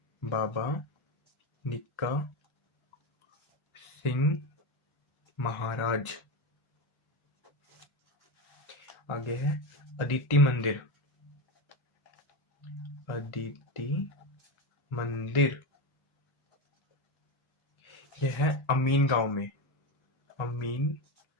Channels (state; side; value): late; right; 1.4 ms